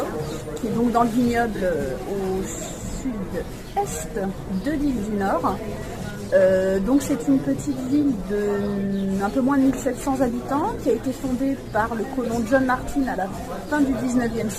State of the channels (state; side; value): identical; both; correlation 1.00